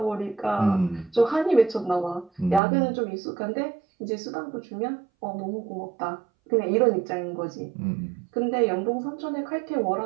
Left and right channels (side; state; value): left; drops out; at 2.6 s